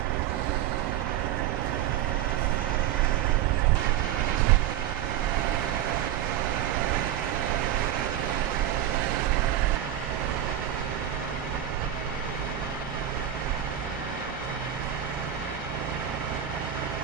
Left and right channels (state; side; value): quieter; left; 10.9 dB